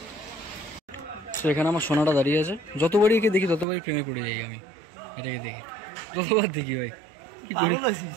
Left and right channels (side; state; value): left; drops out; at 3.7 s